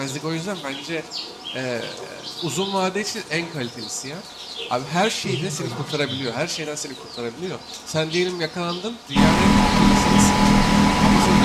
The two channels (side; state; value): both; identical; correlation 1.00